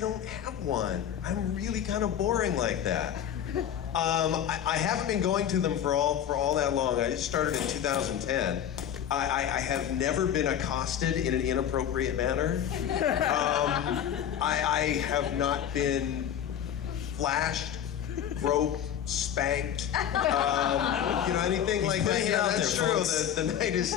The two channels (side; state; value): right; quieter; 9.7 dB